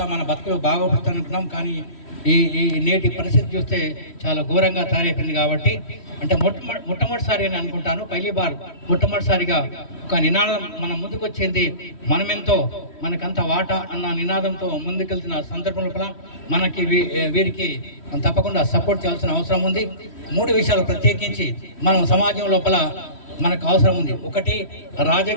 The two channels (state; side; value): late; right; 3.1 ms